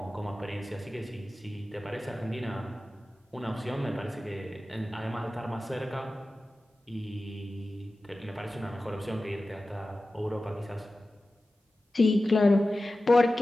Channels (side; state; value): both; normal; correlation 0.95